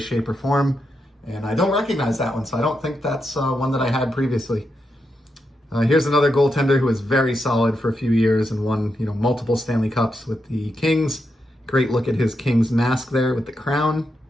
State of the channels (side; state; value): both; normal; correlation 0.84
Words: or form. And I don't recognize that one, so I don't think that's one that I had previously. Here's another goaltender who was very solid for a few years and won, multiple Stanley Cups with the Kings. Great look at his Kings mask there with the crown.